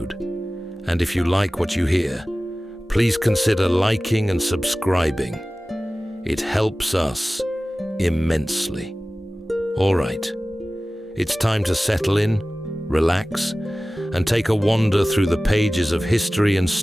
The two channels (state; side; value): normal; both; correlation 0.97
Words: And if you like what you hear, please consider liking and subscribing. It helps us immensely. All right, it's time to settle in, relax, and take a wander through the pages of history and